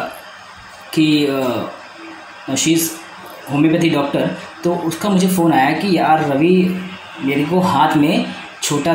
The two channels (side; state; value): both; identical; correlation 1.00